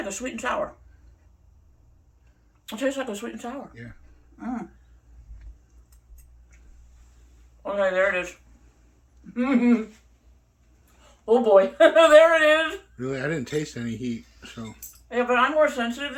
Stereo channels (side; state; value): both; identical; correlation 1.00